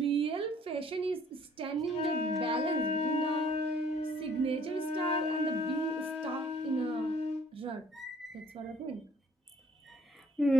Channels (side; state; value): both; normal; correlation 0.59